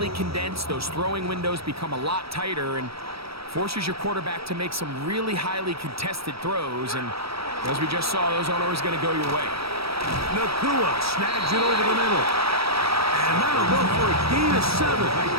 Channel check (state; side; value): late; left; 0.76 ms